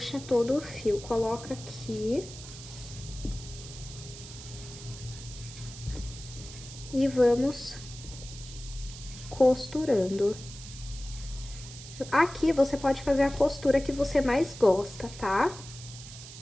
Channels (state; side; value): noise; right; hiss, 14 dB below the sound